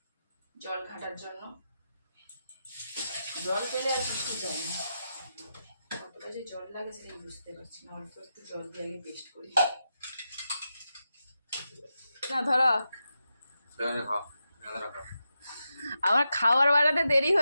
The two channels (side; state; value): both; inverted; correlation -0.88